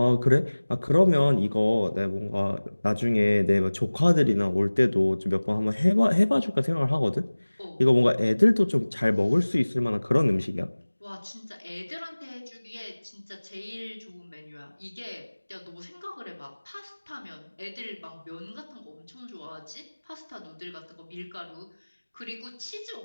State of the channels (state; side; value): inverted; both; correlation -1.00